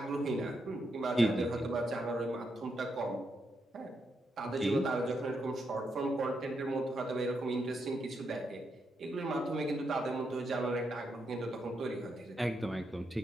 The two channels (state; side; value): normal; both; correlation 0.81